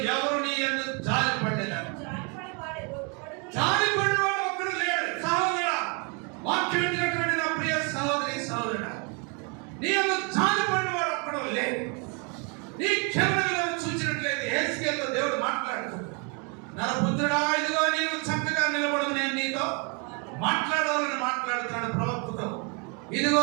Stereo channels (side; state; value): left; quieter; 34.0 dB